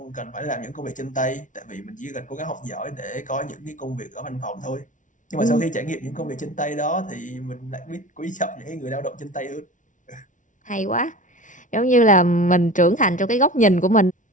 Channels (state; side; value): late; right; 0.37 ms